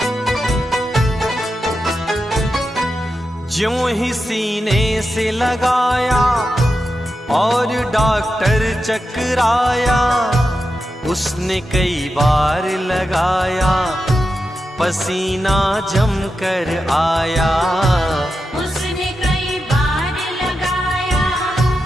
ज्यों ही सीने से लगाया और डॉक्टर चकराया, उसने कई बार लगाया, पसीना जम कर आया। उसने कई बार लगाया,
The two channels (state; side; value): normal; both; correlation 0.89